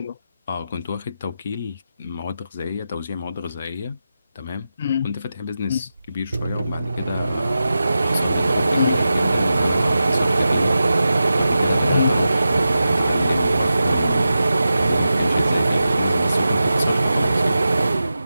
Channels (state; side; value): inverted; both; correlation -0.92